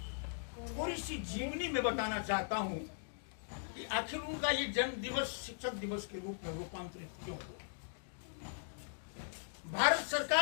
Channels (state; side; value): silent; right; digital silence